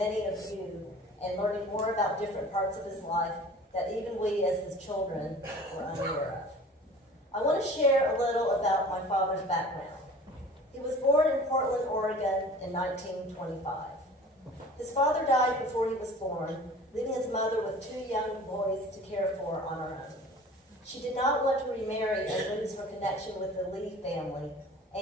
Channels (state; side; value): normal; both; correlation 0.44